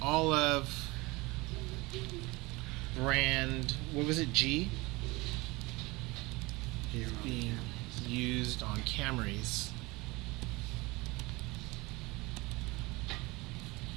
All of brand, what was it, G? Is being used on Camrys.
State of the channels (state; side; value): quieter; left; 23.2 dB